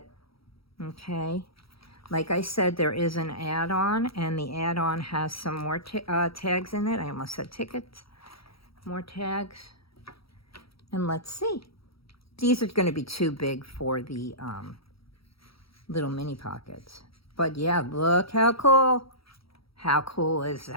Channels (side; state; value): right; late; 0.75 ms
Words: okay? Like I said, there is an add-on, and the add-on has some more tags in it. I almost said tickets. More tags. And let's see. These are going to be too big for the little mini pockets. But yeah, look how cool. How cool is